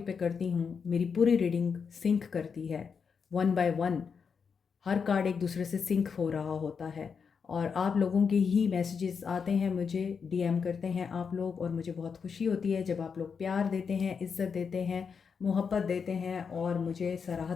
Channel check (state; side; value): quieter; right; 6.1 dB